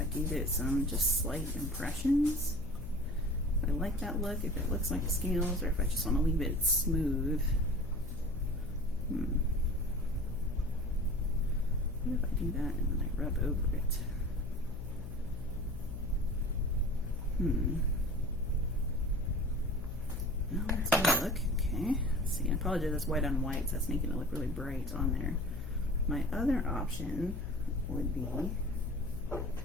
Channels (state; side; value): noise; left; hum, 9 dB below the sound